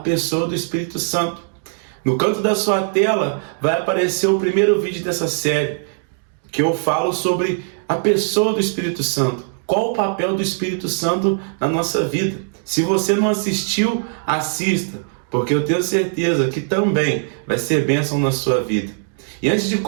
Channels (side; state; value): left; silent; digital silence